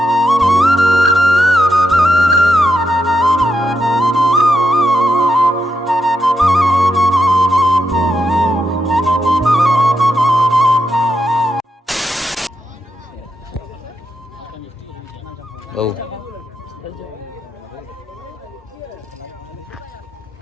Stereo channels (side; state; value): both; normal; correlation 0.83